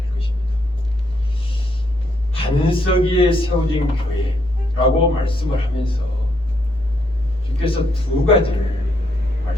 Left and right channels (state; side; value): normal; both; correlation 0.75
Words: 것입니다. 반석 위에 세워진 교회라고 말씀을 하면서 주께서 두 가지를